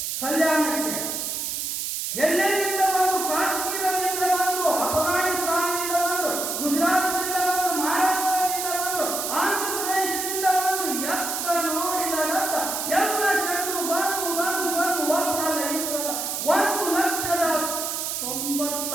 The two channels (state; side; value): noise; right; hiss, 2 dB below the sound